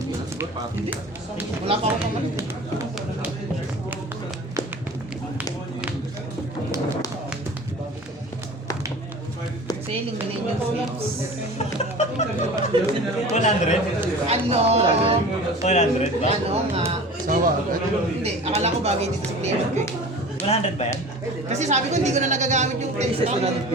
Hindi. Wala pa ako pamalit eh. Sailing Millennium Slips. 100? Ano? 100 ba? Ano nga? Sawa. Hindi, akala ko bagay dito sa player ko eh. 100 ba yan? Kasi sabi ko hindi ko na nagagamit yung 32.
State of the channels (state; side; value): normal; both; correlation 0.39